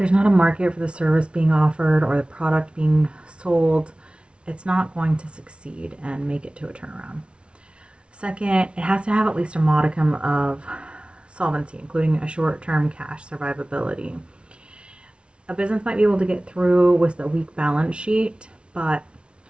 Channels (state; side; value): late; left; 0.058 ms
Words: not a market for the service being offered or the product being sold, it's not going to succeed and make it to a turnaround. Second, it has to have at least a modicum of solvency, including a short-term cash survivability. A business might be able to get through with a weak balance sheet, but